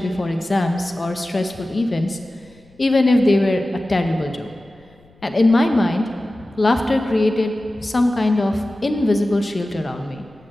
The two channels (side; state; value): left; noise; rumble, 30 dB below the sound